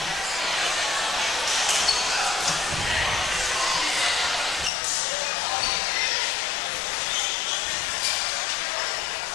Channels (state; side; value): drops out; right; at 4.7 s